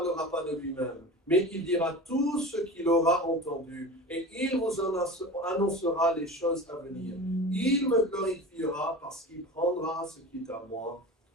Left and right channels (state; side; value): normal; both; correlation 0.33